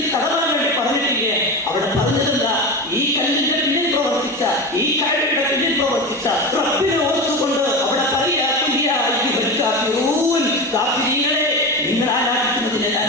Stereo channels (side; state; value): both; normal; correlation 0.23